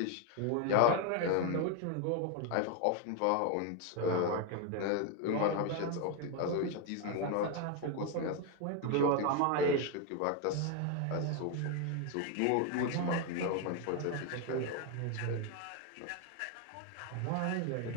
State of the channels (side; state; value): both; different; correlation 0.01